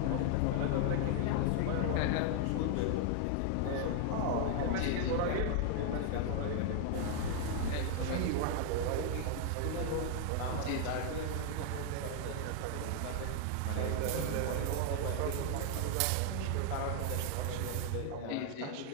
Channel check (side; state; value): both; different; correlation 0.00